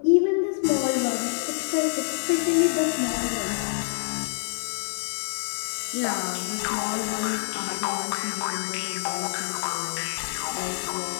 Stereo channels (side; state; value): right; silent; digital silence